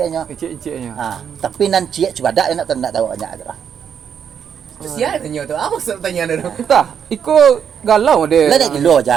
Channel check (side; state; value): left; quieter; 7.9 dB